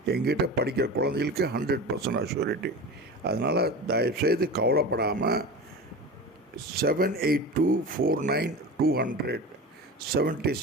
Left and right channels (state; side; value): normal; both; correlation 0.31